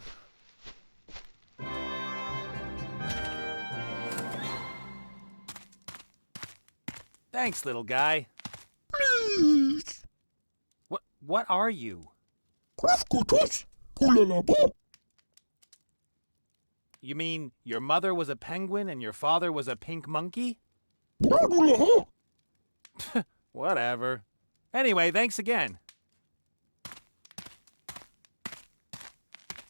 Thanks, little guy. Please. What are you? Krafkutus. Pulalabo. You mean your mother was a penguin and your father was a pink monkey? Bradulaha. Whatever. Anyway, thanks again.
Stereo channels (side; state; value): both; inverted; correlation -1.00